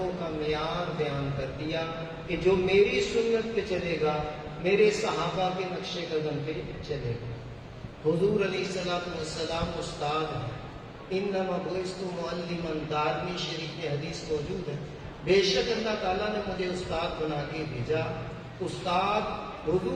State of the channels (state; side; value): identical; both; correlation 1.00